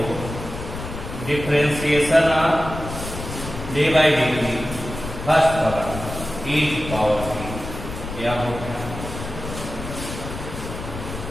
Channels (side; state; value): left; noise; rumble, 9 dB below the sound